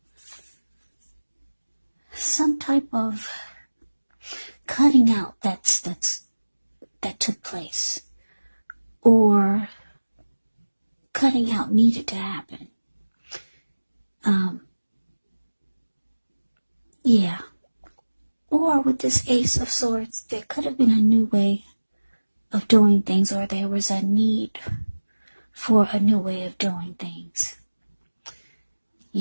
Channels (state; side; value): inverted; both; correlation -1.00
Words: cutting out that took place, or cutting out needed to happen. Yeah. Or with this Ace of Swords, there could have been a new way of doing things, or there was a need for a new way of doing things.